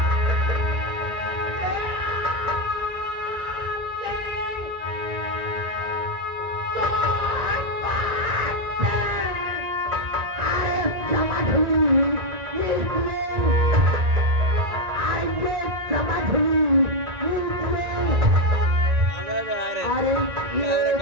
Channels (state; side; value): late; left; 1.9 ms